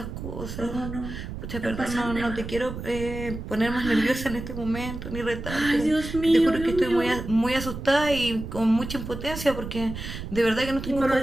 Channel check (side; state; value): right; noise; rumble, 8 dB below the sound